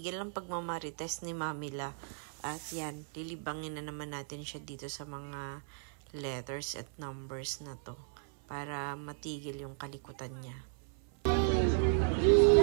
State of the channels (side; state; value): left; silent; 54 dB below the other